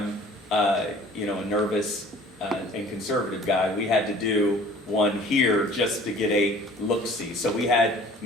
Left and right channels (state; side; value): normal; both; correlation 0.50